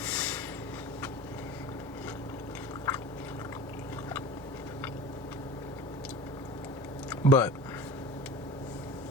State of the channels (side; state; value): both; normal; correlation 0.37